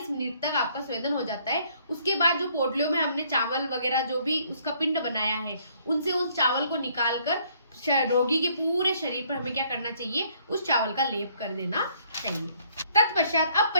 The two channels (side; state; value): both; inverted; correlation -0.63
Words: मिनट तक आपका स्वेदन हो जाता है, उसके बाद जो पोटलियों में हमने चावल वगैरह जो भी उसका पिंड बनाया है, उनसे उस चावल को निकालकर रोगी के पूरे शरीर पर हमें क्या करना चाहिए, उस चावल का लेप कर देना चाहिए। तत्पश्चात, अब